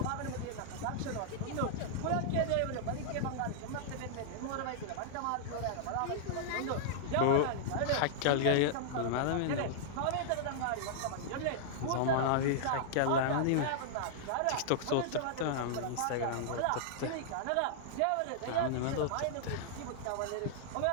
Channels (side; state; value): both; different; correlation -0.01